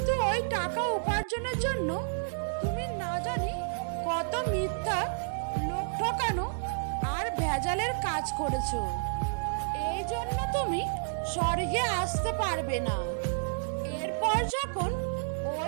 ওই টাকা উপার্জনের জন্য তুমি না জানি কত মিথ্যা, লোক ঠকানো আর ভেজালের কাজ করেছো। এই জন্য তুমি স্বর্গে আসতে পারবে না। এরপর যখন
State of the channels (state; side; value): silent; left; 57 dB below the other